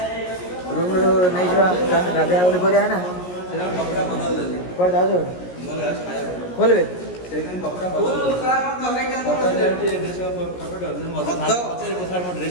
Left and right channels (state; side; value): late; right; 17 ms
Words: नहीं गाधे बोली कर ना कौन जाओ खोलबे